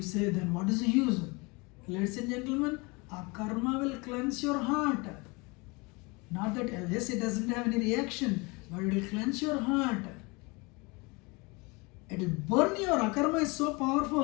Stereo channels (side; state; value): right; quieter; 27.2 dB